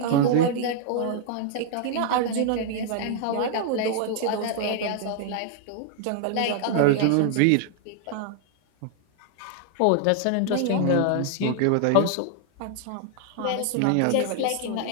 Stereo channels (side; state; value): both; different; correlation 0.00